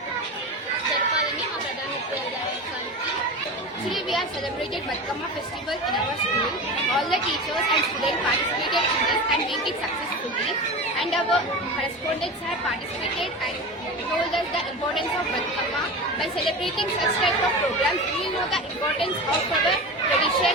జరపాలని మా ప్రధానోపాధ్యాయులకి. Today we have celebrated Batkama festival in our school. All the teachers and students participated in this and made it successfully. And our correspondents have participated and told us the importance of Batkama. By celebrating such type of programs, we will know the importance of our tradition,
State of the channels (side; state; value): both; normal; correlation 0.28